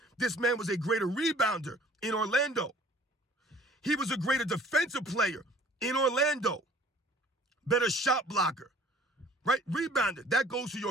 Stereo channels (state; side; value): normal; both; correlation 0.53